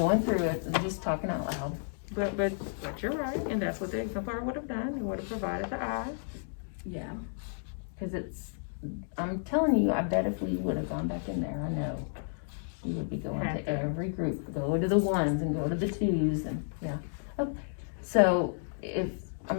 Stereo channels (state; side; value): silent; right; digital silence